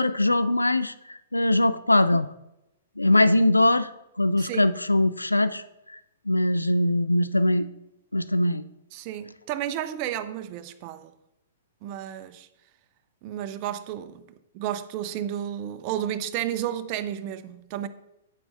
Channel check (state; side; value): inverted; both; correlation -0.87